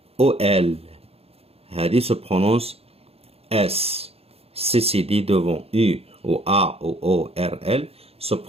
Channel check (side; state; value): left; late; 0.29 ms